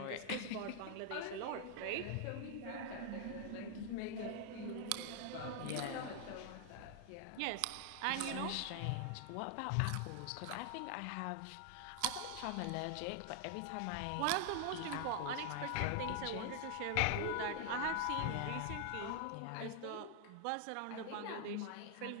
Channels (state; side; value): different; both; correlation 0.00